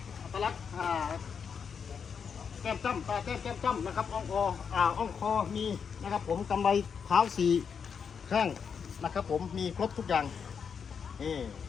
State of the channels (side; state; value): right; quieter; 6.6 dB